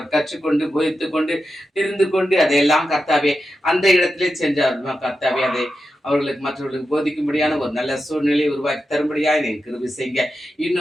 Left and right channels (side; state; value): both; normal; correlation 0.89